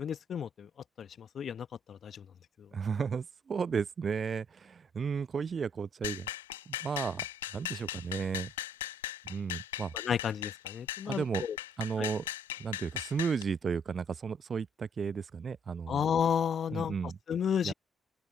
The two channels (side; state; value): both; normal; correlation 0.66